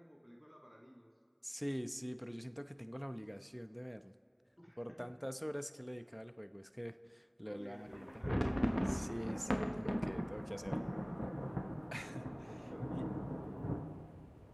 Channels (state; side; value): identical; both; correlation 1.00